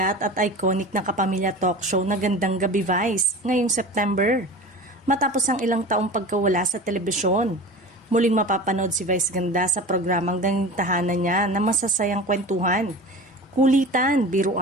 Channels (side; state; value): both; normal; correlation 0.35